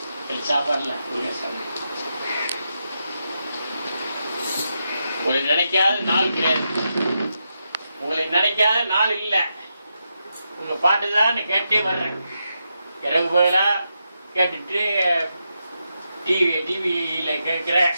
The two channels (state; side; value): inverted; both; correlation -0.85